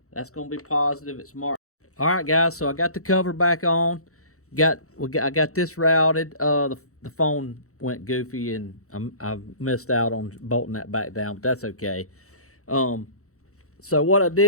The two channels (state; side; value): late; right; 0.64 ms